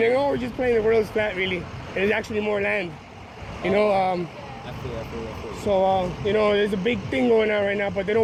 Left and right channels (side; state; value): both; identical; correlation 1.00